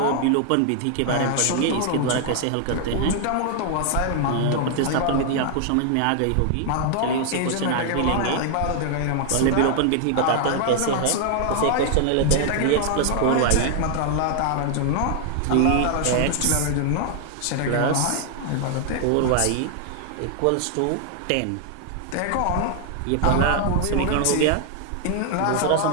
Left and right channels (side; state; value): both; different; correlation 0.00